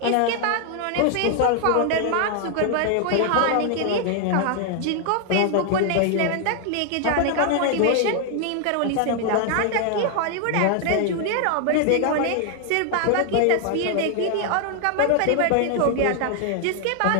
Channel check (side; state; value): both; different; correlation 0.00